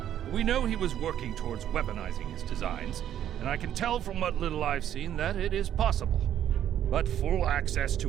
We know he was working towards weaponizing his designs, and I can tell from what little I've seen that it is possible. But full access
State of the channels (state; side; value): quieter; left; 10.7 dB